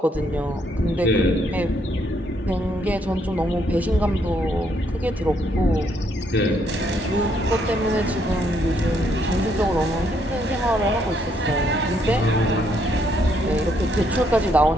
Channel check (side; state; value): both; normal; correlation 0.72